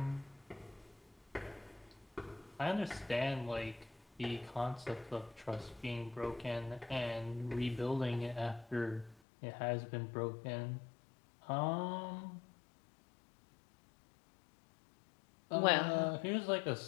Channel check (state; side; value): drops out; right; at 9.2 s